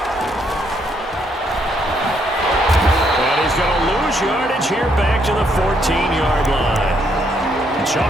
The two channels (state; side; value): normal; both; correlation 0.73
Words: He's going to lose yardage here back to the 14-yard line.